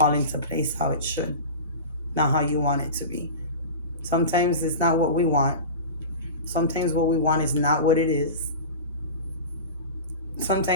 into place how it should, not how you want it to be. Sometimes it's not what we want. Sometimes what we want is not what it is.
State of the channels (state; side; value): inverted; both; correlation -0.30